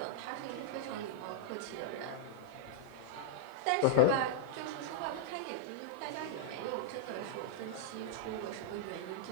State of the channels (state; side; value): different; both; correlation -0.01